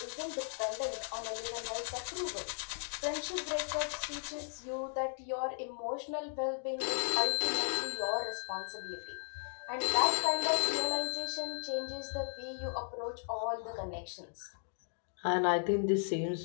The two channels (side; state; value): right; silent; digital silence